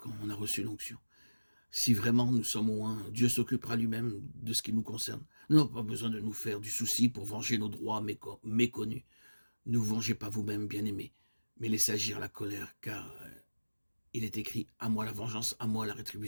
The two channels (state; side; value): inverted; both; correlation -1.00